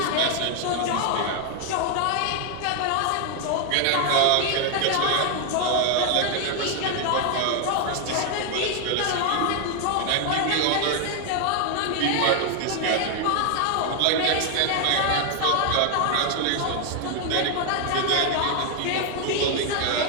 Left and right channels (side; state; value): both; different; correlation 0.00